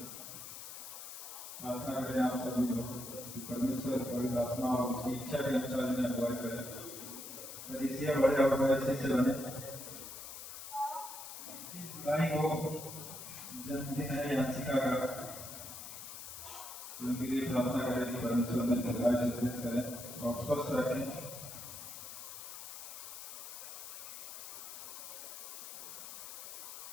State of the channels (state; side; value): noise; left; hiss, 10 dB below the sound